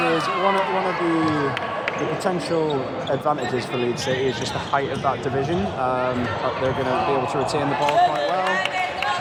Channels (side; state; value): both; identical; correlation 1.00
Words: one of the potential advantages for Leeds City is just the height of that division. They're going to be able to retain the ball quite well.